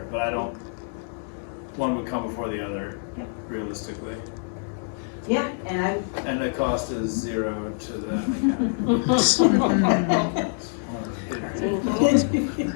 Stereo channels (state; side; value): silent; right; digital silence